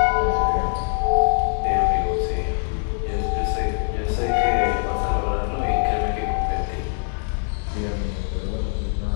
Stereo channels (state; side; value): silent; right; digital silence